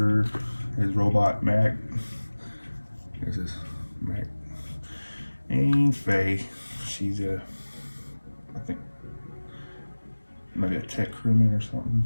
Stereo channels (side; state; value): both; inverted; correlation -1.00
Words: his robot Mac. There's this Mac. And Faye, she's I think, maybe a tech crewman or something.